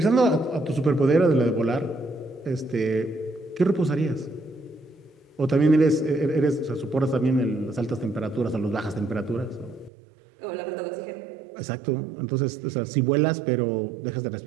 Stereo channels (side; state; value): left; drops out; at 9.9 s